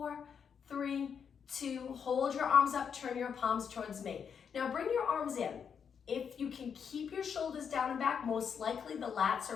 3, 2. Hold your arms up, turn your palms towards me. Now bring your arms in. If you can keep your shoulders down and back, most likely the lats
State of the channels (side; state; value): right; quieter; 7.1 dB